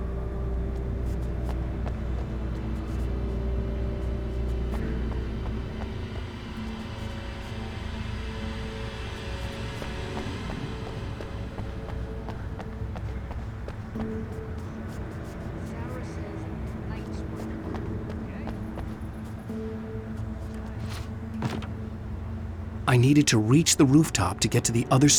I needed to reach the rooftop to get to the other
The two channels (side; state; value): both; identical; correlation 1.00